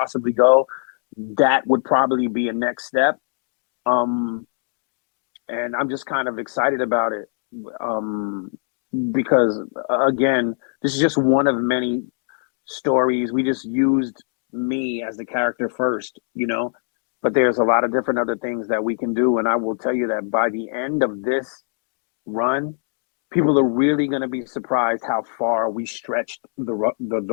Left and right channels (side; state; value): right; silent; digital silence